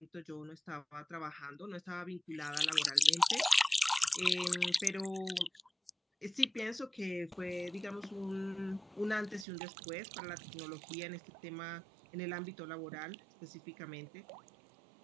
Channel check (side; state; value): left; drops out; at 9.5 s